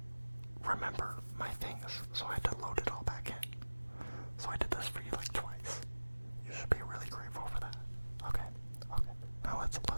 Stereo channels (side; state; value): both; inverted; correlation -1.00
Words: remember my things, so I had to load it all back in. So I did this for you like twice. You should be really grateful for that. Okay. Now let's